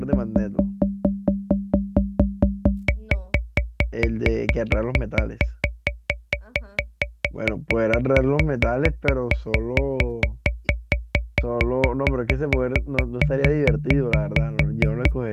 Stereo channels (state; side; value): identical; both; correlation 1.00